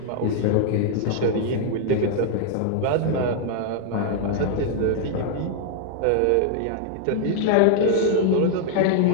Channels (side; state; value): both; different; correlation 0.00